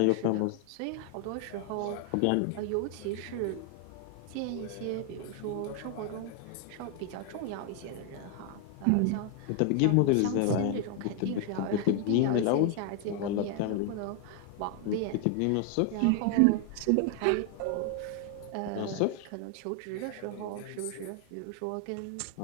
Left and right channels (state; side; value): different; both; correlation 0.00